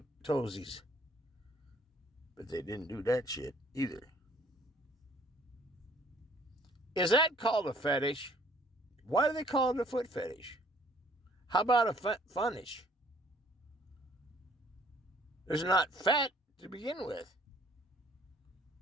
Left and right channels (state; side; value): normal; both; correlation 0.59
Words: But they didn't do that shit either. Is that called a fetish? Why do they call it a foot fetish? How about a funish? There's not fat to begin with.